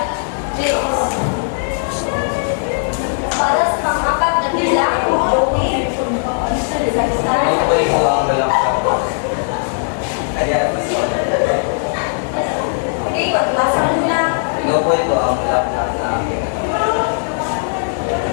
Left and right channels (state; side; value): silent; right; digital silence